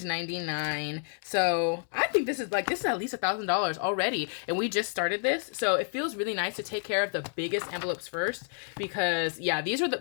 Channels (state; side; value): silent; right; 58 dB below the other